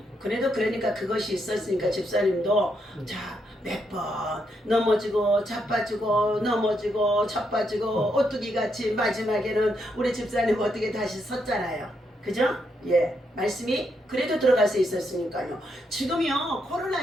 그래도 그러니까 그것이 있었으니까 집사님도 몇 번 넘어지고 자빠지고 오뚜기 같이 마지막에는 우리 집사님 어떻게 다시 섰잖아요. 그죠? 예, 말씀이 그래도 들어갈 수 있었으니까요. 지금요 코로나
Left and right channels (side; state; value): both; normal; correlation 0.79